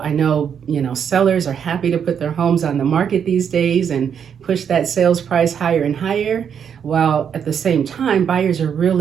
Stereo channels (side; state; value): left; quieter; 7.8 dB